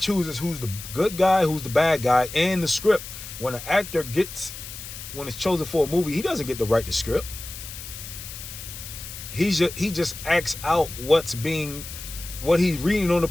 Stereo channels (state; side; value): noise; left; hiss, 11 dB below the sound